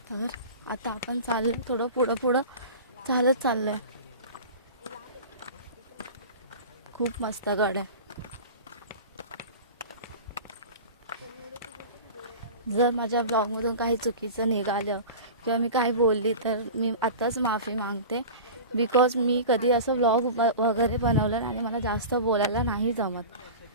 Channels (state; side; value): inverted; both; correlation -0.34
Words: तर आता आपण चाललो थोडं पुढं चालत चाललोय. खूप मस्त गड आहे. जर माझ्या ब्लॉगमधून काही चुकीचं निघालं किंवा मी काही बोलली तर मी आताच माफी मागते. बिकॉज मी कधी असं ब्लॉग वगैरे बनवलं आणि मला जास्त बोलायला नाही जमत.